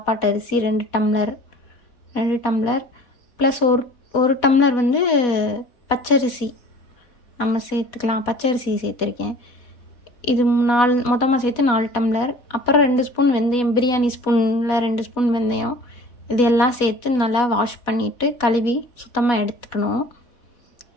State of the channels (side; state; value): right; late; 4.1 ms